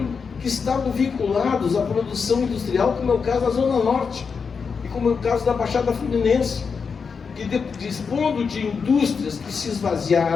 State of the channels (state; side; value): quieter; right; 5.6 dB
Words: que estavam vinculados à produção industrial, como é o caso da Zona Norte e como é o caso da Baixada Fluminense, que, dispondo de indústrias que se